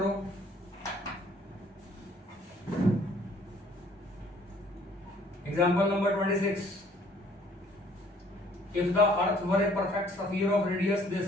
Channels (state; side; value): normal; both; correlation 0.59